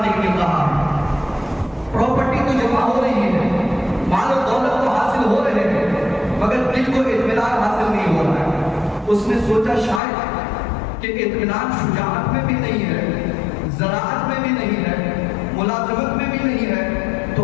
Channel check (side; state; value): right; drops out; at 10.0 s